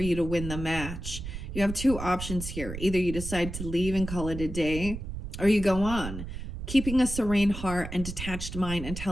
you to win the match. You have 2 options here. Either you decide to leave and call it a day, or you go on, keeping a serene heart and detached mind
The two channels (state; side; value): noise; right; rumble, 8 dB below the sound